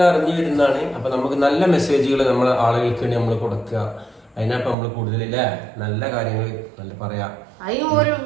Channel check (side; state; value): left; drops out; at 4.8 s